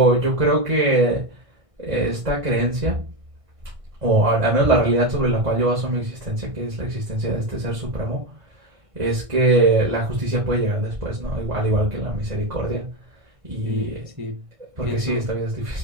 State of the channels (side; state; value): left; late; 1.6 ms